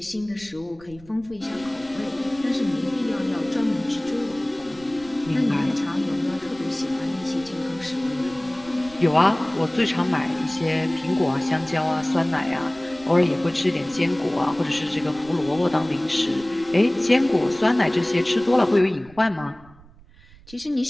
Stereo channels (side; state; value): right; noise; rumble, 23 dB below the sound